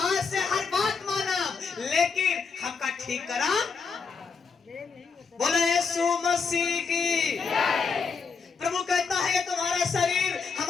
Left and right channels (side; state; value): right; quieter; 5.3 dB